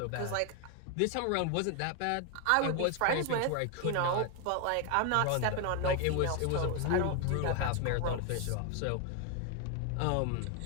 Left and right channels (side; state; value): both; different; correlation 0.01